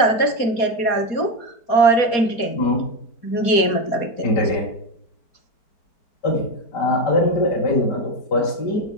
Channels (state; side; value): late; right; 4.2 ms